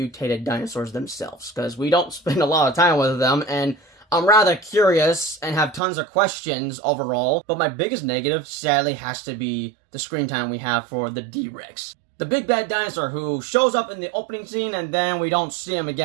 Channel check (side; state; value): left; drops out; at 5.8 s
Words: dinosaurs themselves, because we don't spend a lot of time with them, and I'm rather curious and have tons of questions overall. But my biggest negative, sadly, has to be the screen time we have for the D-Rex. The big bad dinosaur who shows up in the opening scene and then we don't see him